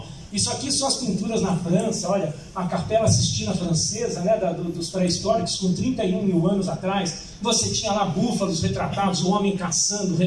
Isso aqui são as pinturas na França, olha, a Capela Sistina francesa, né, dos pré-históricos, com 31 mil anos atrás. Você tinha lá búfalos retratados, o homem caçando,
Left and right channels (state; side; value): identical; both; correlation 1.00